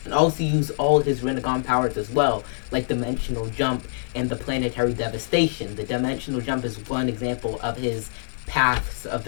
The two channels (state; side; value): silent; right; digital silence